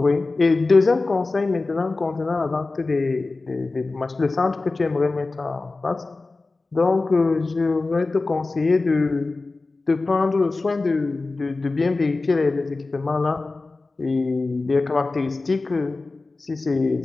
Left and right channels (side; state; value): right; quieter; 3.5 dB